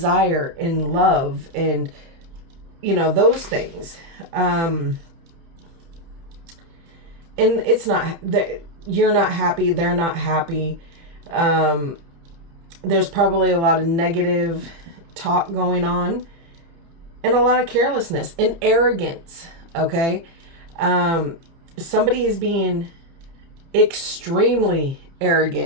and love and, those things. And it's not that you're not happy, they're not happy. There's probably a lot of negative talk going on and a lot of carelessness and arrogance. Okay. Somebody is being extremely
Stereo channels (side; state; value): left; late; 30 ms